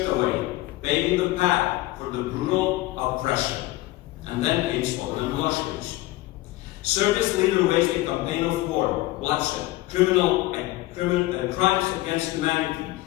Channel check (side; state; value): right; quieter; 18.2 dB